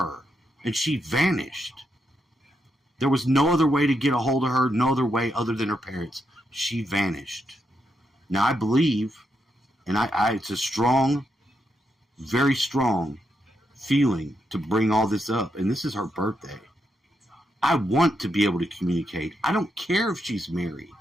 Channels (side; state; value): both; normal; correlation 0.82